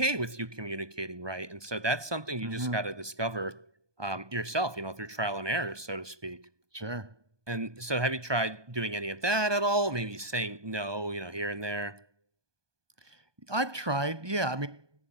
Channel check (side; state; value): left; late; 1.2 ms